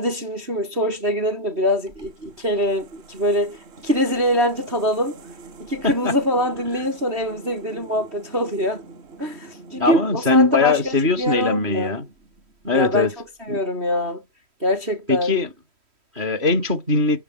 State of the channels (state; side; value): late; left; 3.1 ms